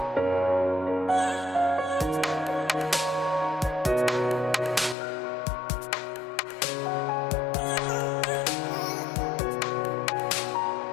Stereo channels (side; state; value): right; drops out; at 5.0 s